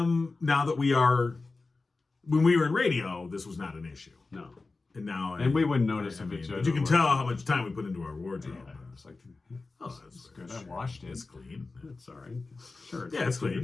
now that we are, when we were in radio, this was not an issue. No. And now, And we wouldn't notice if it's. but you can tell how much time we put into our wardrobe. Yeah, it's like, Oh, it's good. I washed it. It's clean. It's all right. Sure. Yeah, it's clean.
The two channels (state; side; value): quieter; right; 3.7 dB